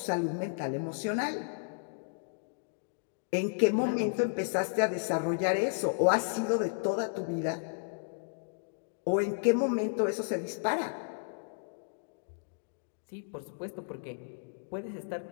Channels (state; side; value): silent; right; digital silence